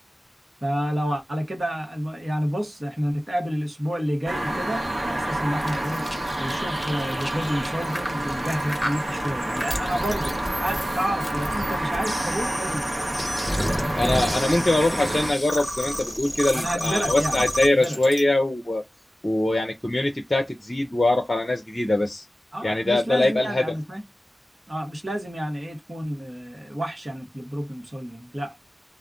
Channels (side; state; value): both; normal; correlation 0.96